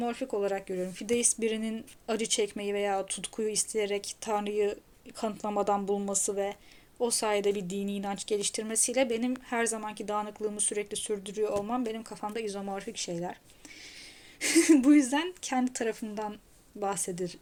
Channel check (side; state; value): both; identical; correlation 1.00